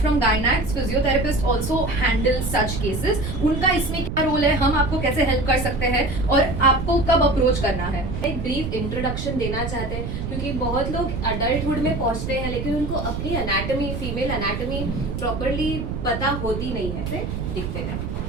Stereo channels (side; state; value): right; noise; rumble, 4 dB below the sound